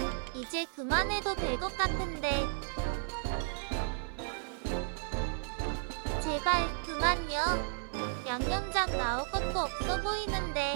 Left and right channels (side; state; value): left; silent; 55 dB below the other